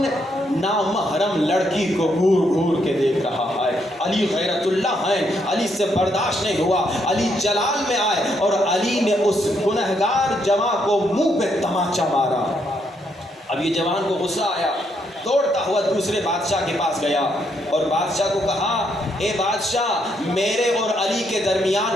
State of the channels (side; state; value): both; normal; correlation 0.75